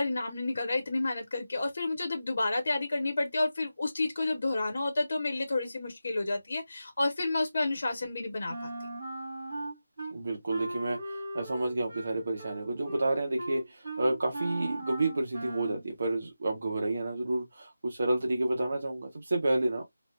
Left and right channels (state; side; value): inverted; both; correlation -0.91